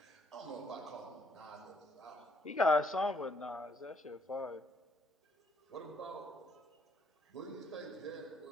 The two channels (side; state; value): both; normal; correlation 0.69